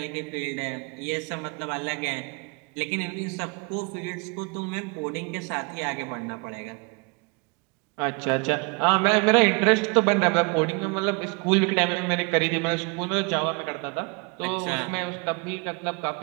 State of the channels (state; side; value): quieter; left; 31.5 dB